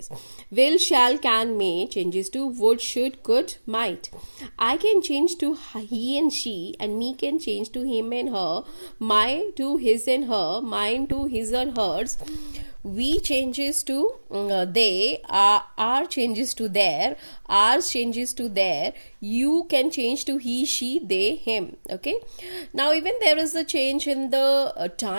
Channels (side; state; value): both; inverted; correlation -1.00